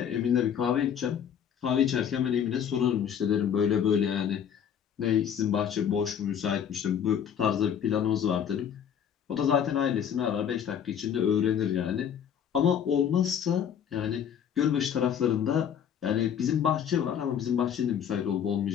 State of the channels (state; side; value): quieter; right; 8.5 dB